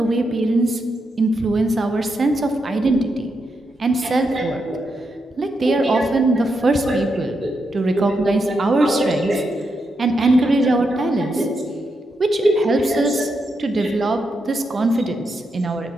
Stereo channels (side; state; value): both; normal; correlation 0.83